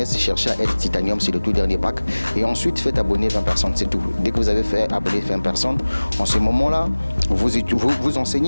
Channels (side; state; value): both; inverted; correlation -1.00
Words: cherchez à être Titanium, c'est le tout dernier pack. Et ensuite, faites abonner 20 personnes, c'est tout. Dès que vous avez fait abonner 20 personnes, en ce moment-là, vous